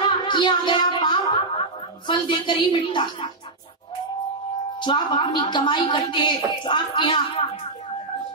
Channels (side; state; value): left; quieter; 3.2 dB